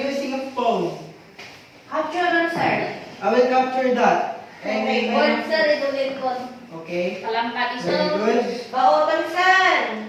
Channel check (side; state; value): both; identical; correlation 1.00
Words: using a phone. Capture dun, sir. I will capture that. And Okay, Word, sir, idulit ko. okay. Palangkat iso. Very good. Baotan, sir.